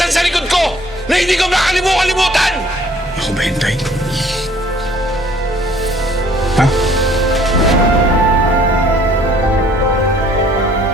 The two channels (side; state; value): both; normal; correlation 0.58